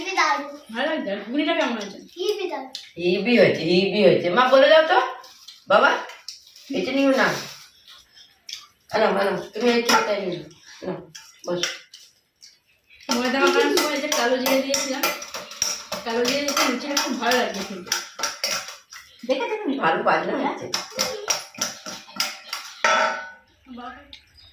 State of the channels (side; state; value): both; identical; correlation 1.00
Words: দারুন, ভালো লাগছে? আর ঘুগনিটা কেমন আছে? হিবি দারুন। হিবি হয়েছে, হিবি হয়েছে। মা বলে দাও তো বাবা, এটা নিও না। আনো আনো, তুমি এই খেতে নিও না, বস। ময়দা মাখানোর সময় যে কালো জিরে দিয়েছিলাম, কালো জিরে দিতে লুচিটা খুব ভালো লাগছে কিন্তু। দেখেছো তুমি? ভালো বাজনা হয়েছে।